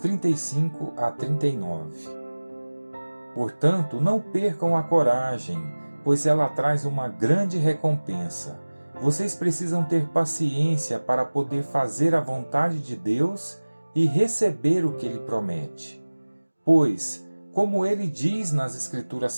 a 39. Portanto, não percam a coragem, pois ela traz uma grande recompensa. Vocês precisam ter paciência para poder fazer a vontade de Deus e receber o que Ele promete. Pois, como ele diz nas Escrituras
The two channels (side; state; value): both; inverted; correlation -1.00